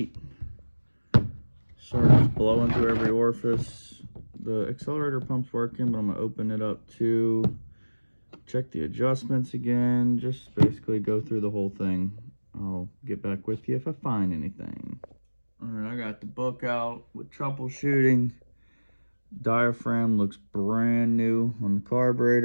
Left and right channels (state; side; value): inverted; both; correlation -1.00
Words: Starts blowing through every orifice. The accelerator pump's working, but I'm gonna open it up too. Check the adjustments again. Just basically go through the whole thing. I'll get back with you if I find anything. Alright, I got the book out with troubleshooting. Diaphragm looks brand new on the